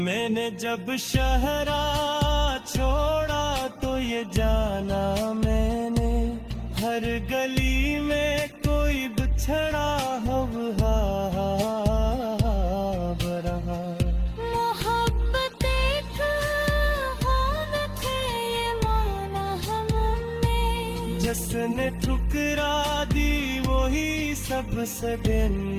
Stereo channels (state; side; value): identical; both; correlation 1.00